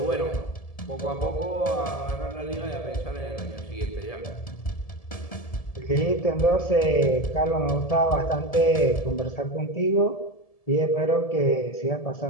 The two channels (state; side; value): late; right; 1.7 ms